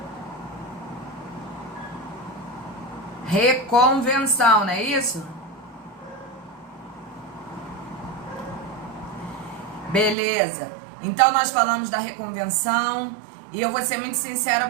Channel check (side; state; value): left; drops out; at 10.2 s